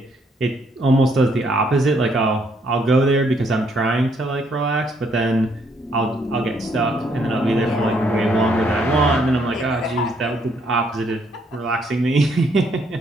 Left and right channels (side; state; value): both; normal; correlation 0.70